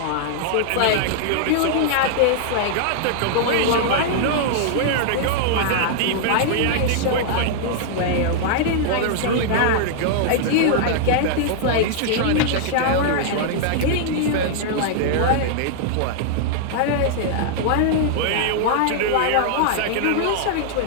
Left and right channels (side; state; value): both; different; correlation -0.01